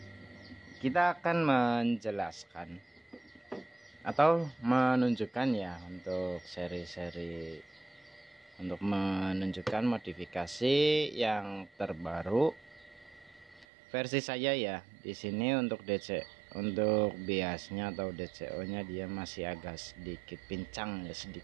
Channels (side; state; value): left; drops out; at 13.7 s